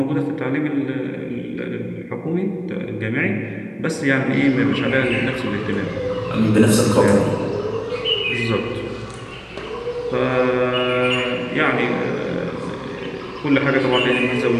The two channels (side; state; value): both; identical; correlation 1.00